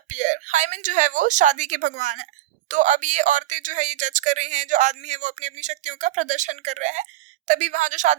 Hymen जो है वो शादी के भगवान है। तो अब ये औरतें जो है ये जज कर रही हैं, जो आदमी है वो अपनी अपनी शक्तियों का प्रदर्शन कर रहे हैं। तभी वहाँ जो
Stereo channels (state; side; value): quieter; left; 14.6 dB